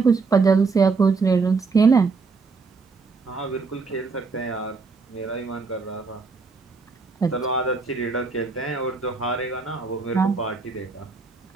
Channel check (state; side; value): quieter; left; 4.4 dB